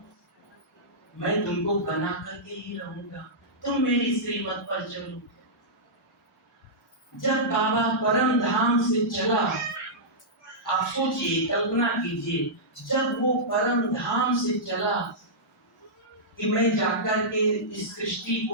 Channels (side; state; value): both; normal; correlation -0.13